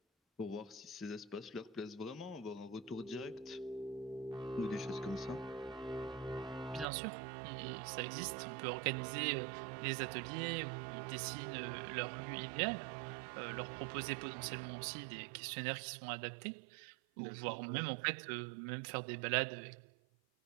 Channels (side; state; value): left; drops out; at 6.9 s